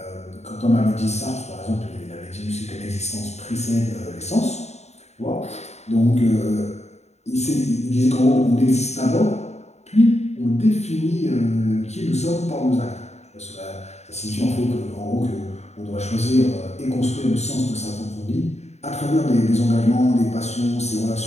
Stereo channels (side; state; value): right; late; 0.32 ms